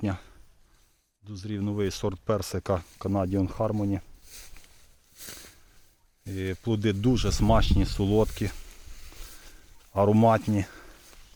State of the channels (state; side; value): identical; both; correlation 1.00